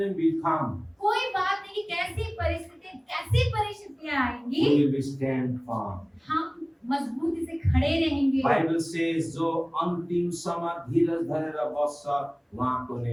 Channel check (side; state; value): both; identical; correlation 1.00